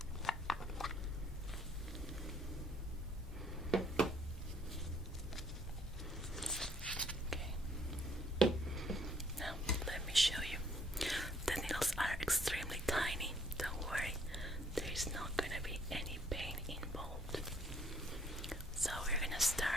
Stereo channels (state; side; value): normal; both; correlation 0.63